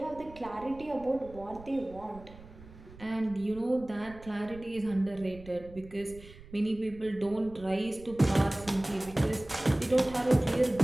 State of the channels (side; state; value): right; noise; rumble, 19 dB below the sound